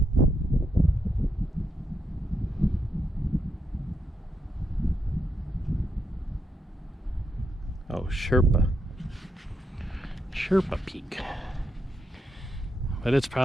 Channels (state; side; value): normal; both; correlation 0.82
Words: Oh, Sherpa Peak. But it's